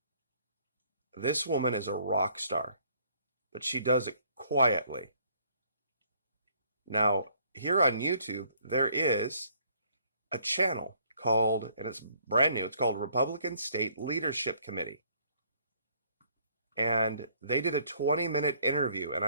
This woman is a rock star, but she does it quietly. Now, here on YouTube, there is a channel called, and it's brand new, it's called Republican State Leadership Committee. And they did a 20-minute interview, and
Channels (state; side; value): inverted; both; correlation -0.63